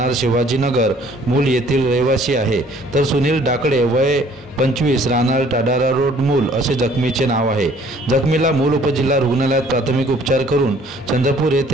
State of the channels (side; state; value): both; normal; correlation 0.57